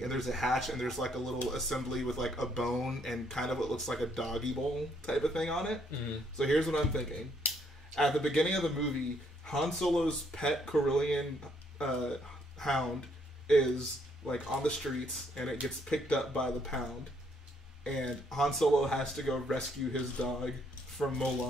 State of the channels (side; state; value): both; normal; correlation 0.69